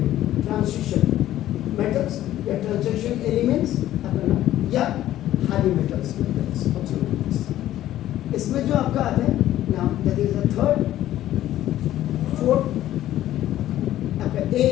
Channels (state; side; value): quieter; right; 13.4 dB